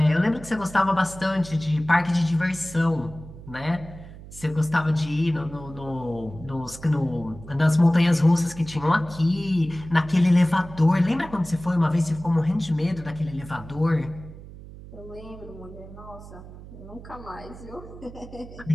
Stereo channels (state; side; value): noise; right; hum, 16 dB below the sound